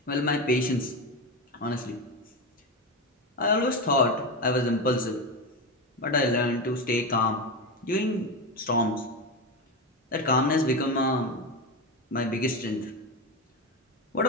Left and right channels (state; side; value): normal; both; correlation 0.17